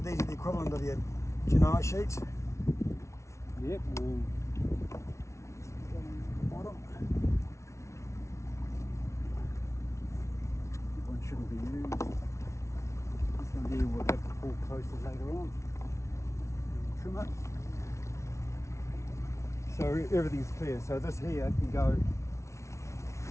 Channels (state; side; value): late; right; 0.13 ms